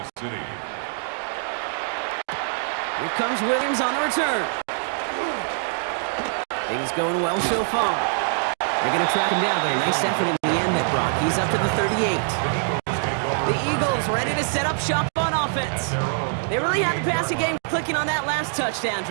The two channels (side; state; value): left; silent; digital silence